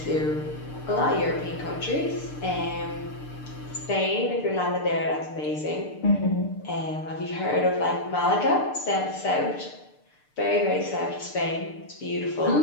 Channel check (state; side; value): late; right; 6.7 ms